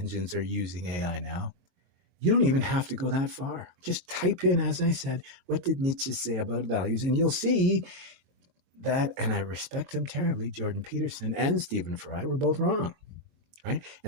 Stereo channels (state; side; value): late; left; 22 ms